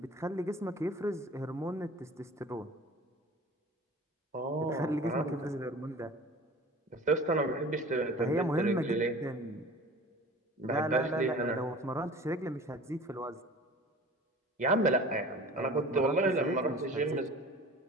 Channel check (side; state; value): both; normal; correlation 0.42